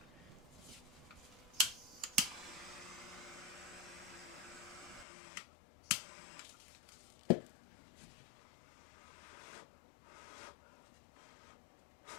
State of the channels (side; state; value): right; drops out; at 5.1 s